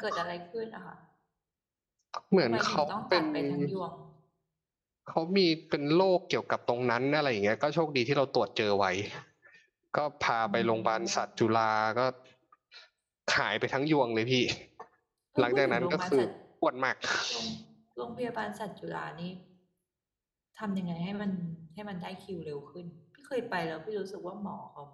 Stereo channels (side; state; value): both; identical; correlation 1.00